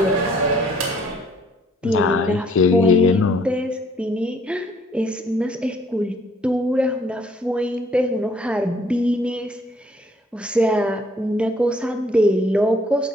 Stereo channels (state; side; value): normal; both; correlation 0.61